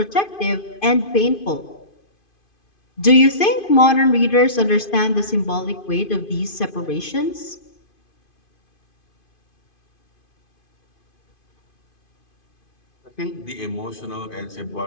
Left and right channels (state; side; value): late; right; 2.5 ms